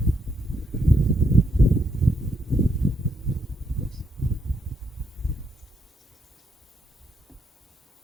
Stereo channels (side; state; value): both; normal; correlation 0.75